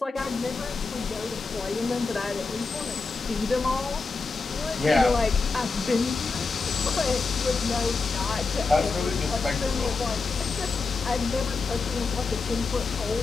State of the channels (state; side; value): quieter; right; 4.2 dB